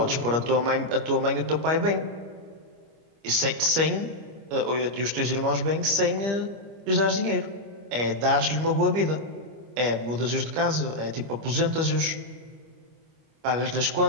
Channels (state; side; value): late; left; 25 ms